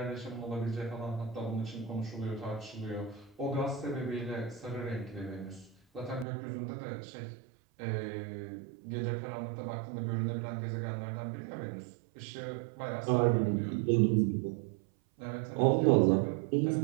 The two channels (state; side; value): drops out; left; at 6.2 s